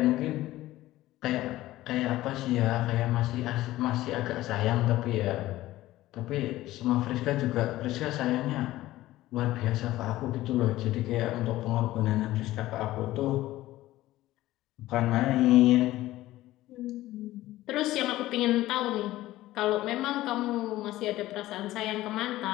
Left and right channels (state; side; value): quieter; right; 16.1 dB